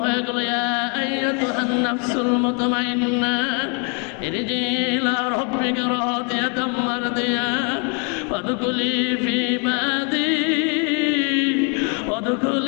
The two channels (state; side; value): quieter; right; 35.7 dB